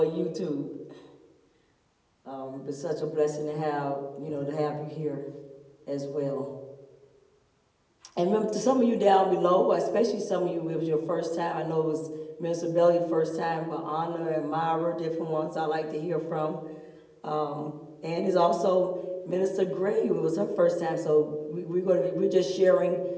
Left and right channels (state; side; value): identical; both; correlation 1.00